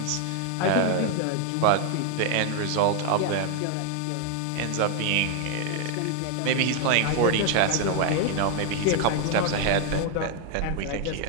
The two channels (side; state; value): both; different; correlation 0.00